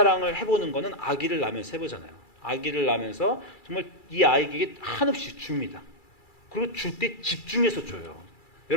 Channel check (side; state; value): right; late; 2.3 ms